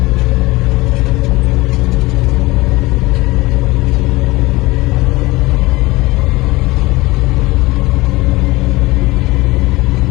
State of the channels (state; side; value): quieter; right; 21.0 dB